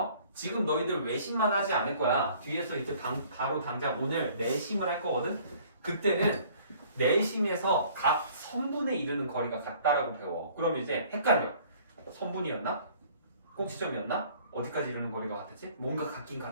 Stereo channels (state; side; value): inverted; both; correlation -0.55